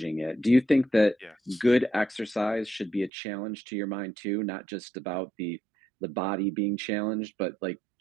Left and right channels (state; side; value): drops out; left; at 3.1 s